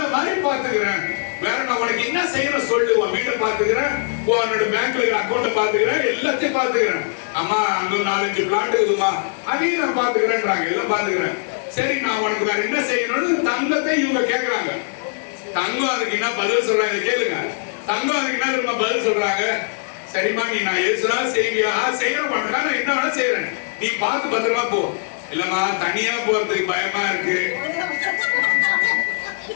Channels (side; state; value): right; silent; 65 dB below the other